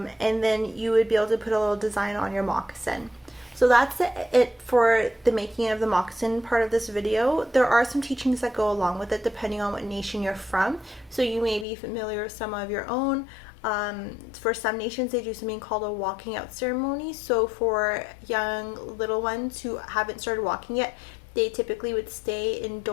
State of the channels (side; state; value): right; drops out; at 11.7 s